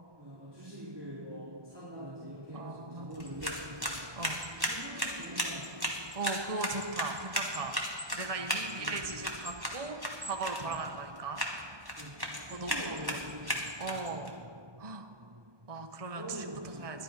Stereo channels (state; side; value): late; left; 1.1 ms